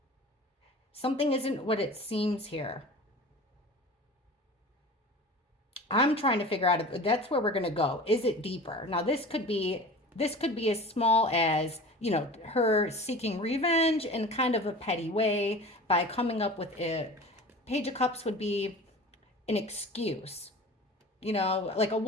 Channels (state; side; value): normal; both; correlation 0.38